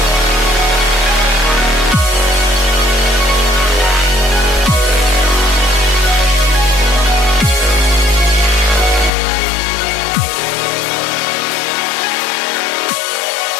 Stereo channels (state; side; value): drops out; right; at 9.1 s